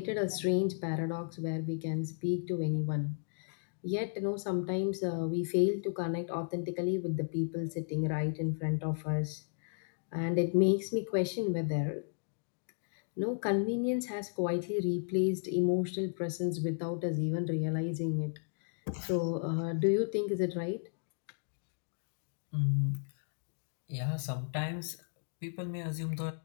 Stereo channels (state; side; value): silent; right; digital silence